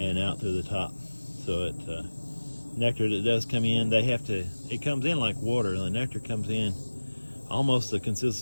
out through the top. So nectar that does come in, it comes in like water. The nectar comes in almost the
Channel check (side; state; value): both; inverted; correlation -1.00